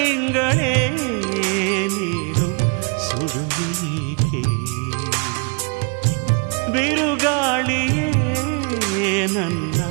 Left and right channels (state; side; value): quieter; left; 34.9 dB